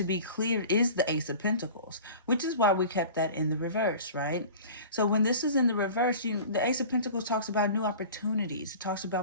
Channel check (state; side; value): inverted; both; correlation -0.40